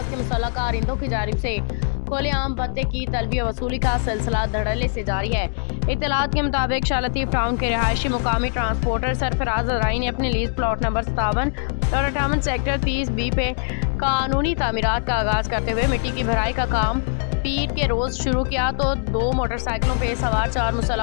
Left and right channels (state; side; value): silent; right; digital silence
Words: के मुसल्लह कारिंदों की जानिब से खुलेआम भत्ते की तलबी वसूली का सिलसिला धड़ल्ले से जारी है। इत्तलात के मुताबिक शालतीफ टाउन के रिहायशी मुकामी ट्रांसपोर्टर सरफराज अजराई ने अपने लीज प्लॉट नंबर 57 और 58 सेक्टर 30B पे कानूनी तामीरात का आगाज करते हुए मिट्टी की भराई का काम पीर के रोज शुरू किया तो 2 मोटरसाइकिलों पे सवार 4